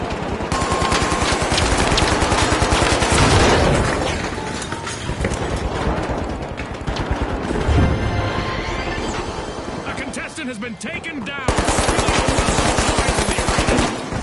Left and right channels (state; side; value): identical; both; correlation 1.00